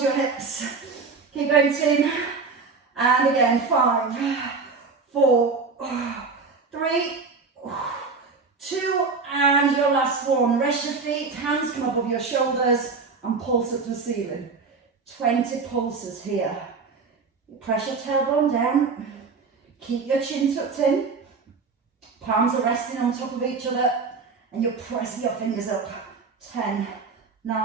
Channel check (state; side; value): quieter; left; 4.7 dB